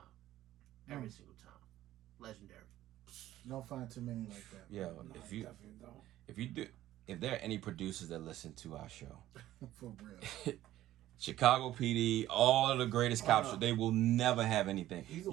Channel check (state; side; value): quieter; left; 14.1 dB